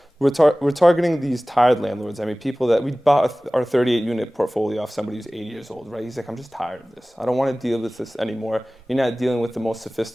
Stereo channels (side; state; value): both; normal; correlation 0.98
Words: we're targeting these tired landlords. I mean, people that we bought our 38 unit portfolio off somebody who's 80 years old, right? He's like, I'm just tired of this. I don't want to deal with this anymore. You're not dealing with the most